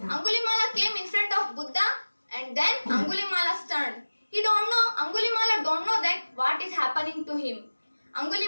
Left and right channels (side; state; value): both; inverted; correlation -1.00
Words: came in front of Buddha and then Angulimala turned. Angulimala don't know that what is happening to him.